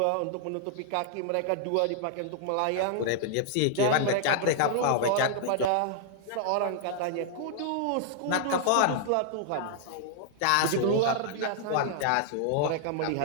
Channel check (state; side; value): different; both; correlation -0.01